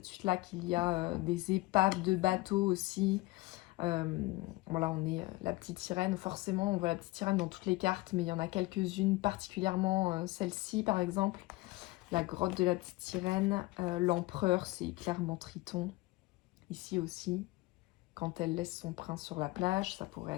suite-là qu'il y a des épaves de bateaux aussi. Voilà, on est la petite sirène. Forcément, on voit la petite sirène dans toutes les cartes, mais il y en a quelques-unes, particulièrement celle-ci par exemple. La grotte de la petite sirène. L'empereur, c'est clairement Triton. Ici aussi, quand elle laisse son prince sur la plage, ça pourrait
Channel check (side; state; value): right; quieter; 20.4 dB